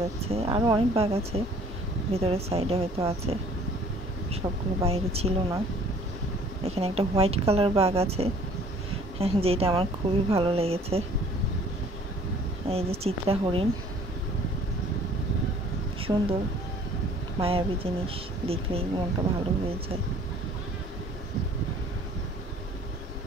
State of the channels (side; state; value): both; normal; correlation 0.55